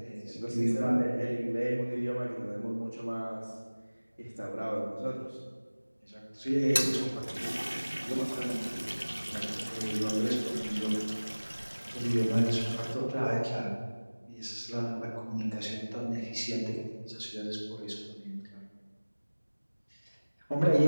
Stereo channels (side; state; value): both; inverted; correlation -1.00